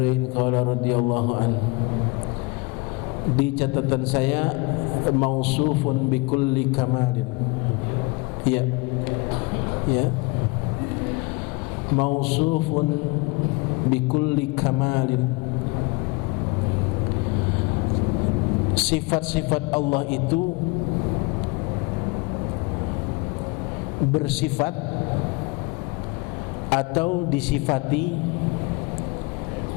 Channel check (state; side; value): quieter; right; 26.3 dB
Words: qala radhiyallahu an. Di catatan saya mausufun bi kulli kamalin. Ya, ya, mausufun bikulli kamalin. Sifat-sifat Allah itu bersifat atau disifati